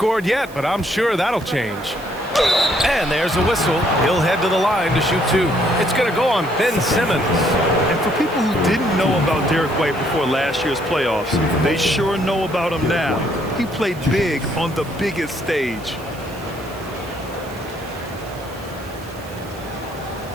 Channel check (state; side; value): noise; right; hiss, 21 dB below the sound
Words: yet, but I'm sure that'll change. And there's a whistle. He'll head to the line to shoot 2. It's going to go on Ben Simmons. And for people who didn't know about Derek White before last year's playoffs, they sure know about him now. He played big on the biggest stage.